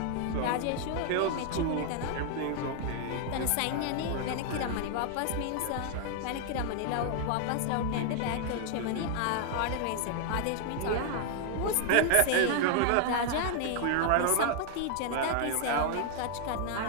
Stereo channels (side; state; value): both; different; correlation 0.00